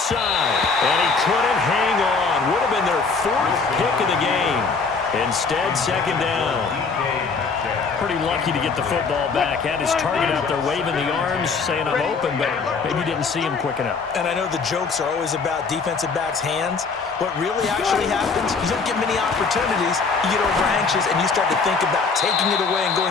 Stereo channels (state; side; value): quieter; right; 4.7 dB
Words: And he couldn't hang on. Would have been their 4th pick of the game. Instead, second down. Pretty lucky to get the football back. Had his target out there waving the arms, saying I'm open, but maybe didn't see him quick enough. And I know the jokes are always about defensive backs' hands. What really actually happens, you don't get many opportunities. You get over anxious, and you start to think about taking it away and going